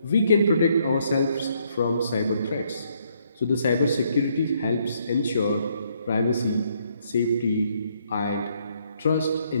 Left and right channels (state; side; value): inverted; both; correlation -0.71